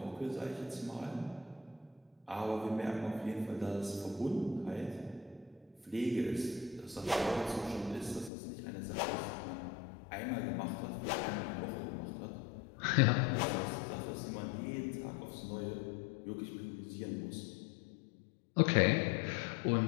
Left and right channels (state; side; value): drops out; right; at 8.3 s